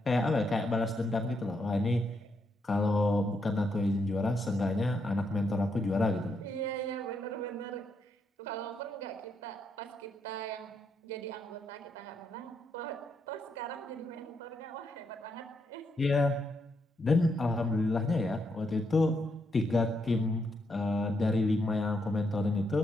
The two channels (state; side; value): normal; both; correlation 0.79